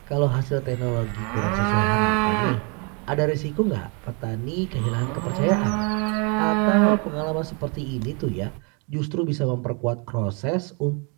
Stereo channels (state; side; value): quieter; left; 33.9 dB